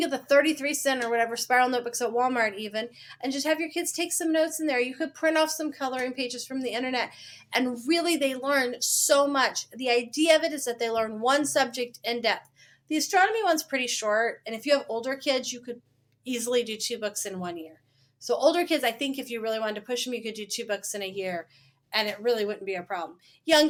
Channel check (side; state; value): both; identical; correlation 1.00